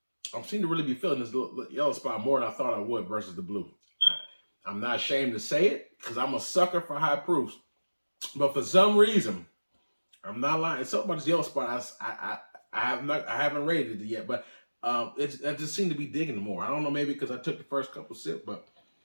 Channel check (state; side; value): inverted; both; correlation -1.00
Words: I seem to really be feeling this yellow spot more than I thought I would versus the blue. I'm not ashamed to say it because I'm a sucker for high proofs. But for some reason, I'm not lying. It's something about this yellow spot. I haven't rated it yet, but I just seem to be digging it more. I don't know, maybe because I took the first couple sips, but